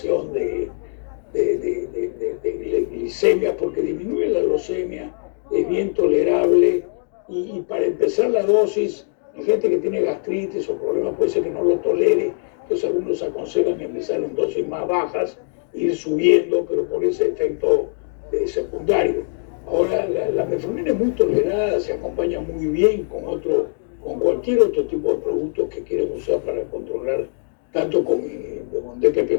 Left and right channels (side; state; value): right; silent; digital silence